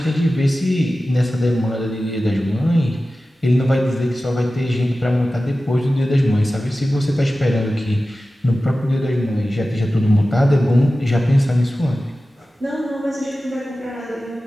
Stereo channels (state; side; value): normal; both; correlation 0.95